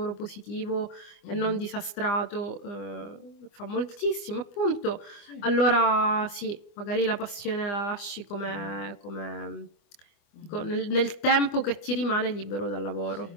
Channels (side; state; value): right; late; 25 ms